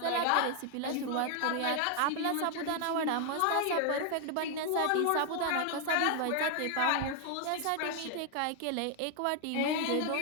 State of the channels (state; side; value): different; both; correlation 0.00